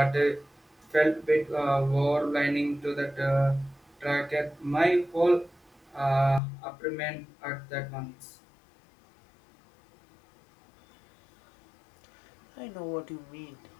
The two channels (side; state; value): right; drops out; at 6.4 s